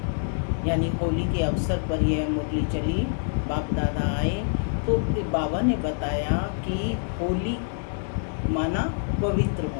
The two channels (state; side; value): silent; right; 61 dB below the other